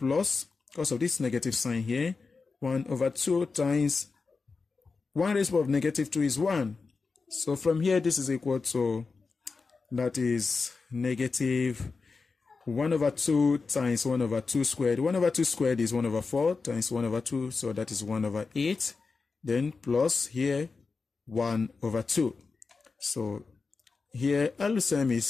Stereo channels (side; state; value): right; quieter; 4.5 dB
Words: because of this negative sign here, 1 over 2 times 1 raised to the power of negative 2 is 1. So from here, this is equal to, that is negative 1 over 2 times 1 over 2 squared. 1 over 2 squared is 1 over 4 times 1 over 2, so that is 1 over 8. Then plus here, 1 over 2. So here, LCM